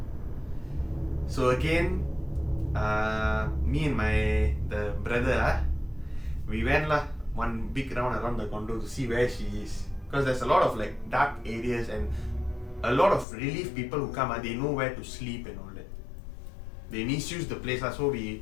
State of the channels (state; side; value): drops out; right; at 13.2 s